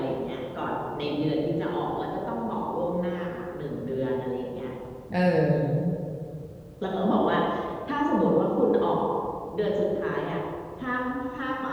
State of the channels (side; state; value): both; identical; correlation 1.00